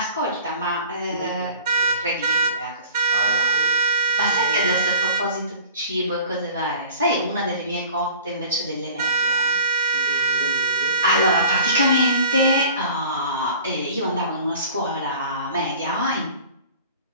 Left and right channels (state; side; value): inverted; both; correlation -0.43